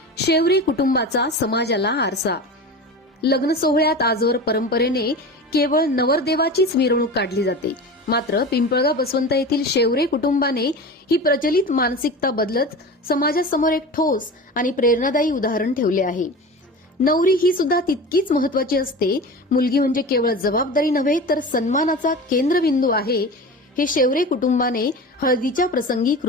शेवरी कुटुंबाचा समाजाला आरसा. लग्न सोहळ्यात आजवर परंपरेने केवळ नवरदेवाचीच मिरवणूक काढली जाते. मात्र पिंपळगाव बसवंत येथील शेवरे कुटुंबाने ही प्रचलित मानसिकता बदलत समाजासमोर एक ठोस आणि प्रेरणादायी उदाहरण ठेवले आहे. नवरी ही सुद्धा तितकीच महत्वाची असते. मुलगी म्हणजे केवळ जबाबदारी नव्हे तर सन्मानाचा केंद्रबिंदू आहे, हे शेवरे कुटुंबाने हळदीच्या प्रसंगी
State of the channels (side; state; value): both; normal; correlation 0.31